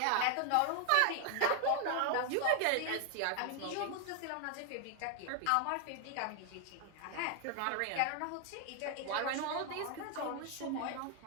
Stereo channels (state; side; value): different; both; correlation 0.01